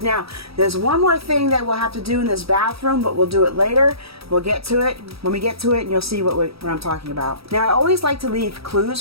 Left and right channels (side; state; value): left; late; 0.77 ms